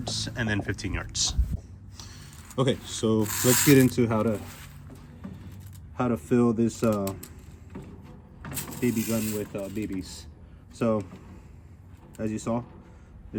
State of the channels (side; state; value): both; identical; correlation 1.00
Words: and then 15 yards. Okay, so let's get into how to fill this BB gun with BBs. So, as you saw,